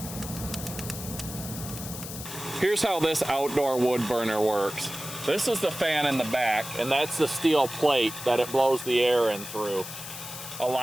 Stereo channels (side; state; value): left; noise; hiss, 10 dB below the sound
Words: Here's how this outdoor wood burner works. This is the fan in the back, and that's the steel plate that it blows the air in through. A